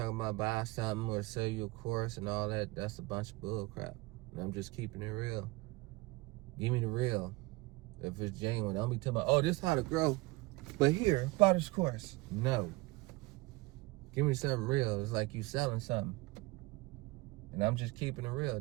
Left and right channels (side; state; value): left; quieter; 22.4 dB